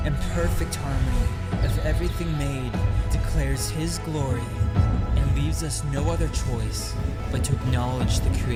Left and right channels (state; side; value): identical; both; correlation 1.00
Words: and perfect harmony of everything made declares His glory and leaves us no other choice but to acknowledge the